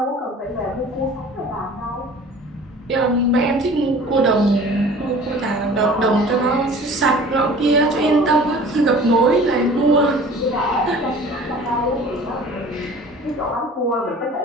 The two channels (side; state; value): both; normal; correlation 0.45